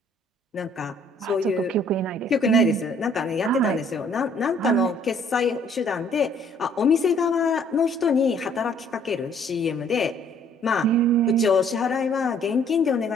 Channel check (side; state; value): both; normal; correlation 0.61